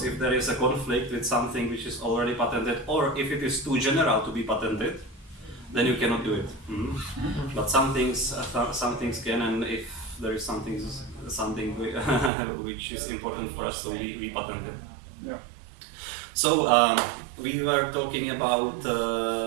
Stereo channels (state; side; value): drops out; left; at 12.3 s